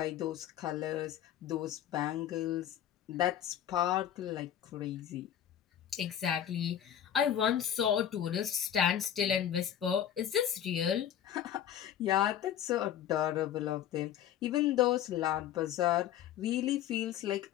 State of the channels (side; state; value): right; quieter; 10.4 dB